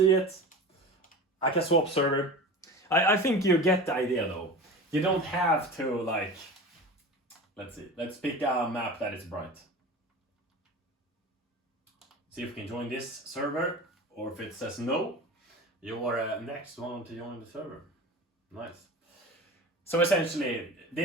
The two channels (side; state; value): both; normal; correlation 0.33